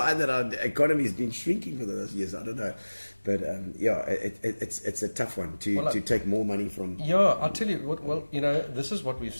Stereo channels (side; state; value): both; inverted; correlation -1.00